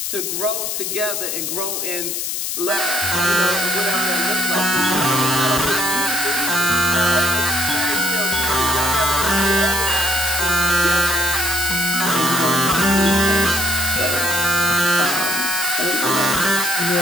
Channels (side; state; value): left; noise; hiss, 2 dB below the sound